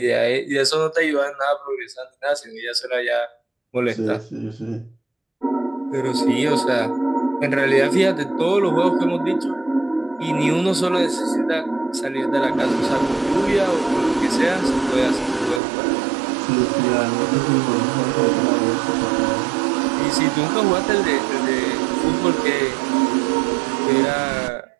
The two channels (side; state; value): left; drops out; at 15.6 s